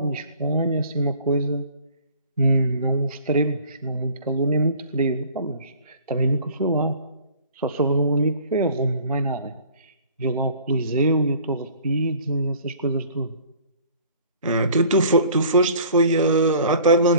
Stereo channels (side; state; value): both; inverted; correlation -0.50